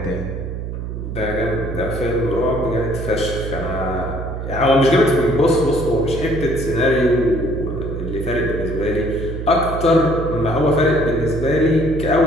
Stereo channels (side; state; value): right; noise; hum, 6 dB below the sound